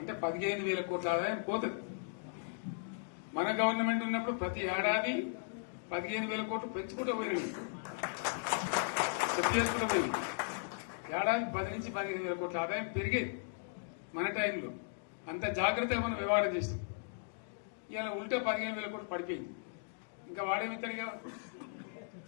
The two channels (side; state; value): right; silent; digital silence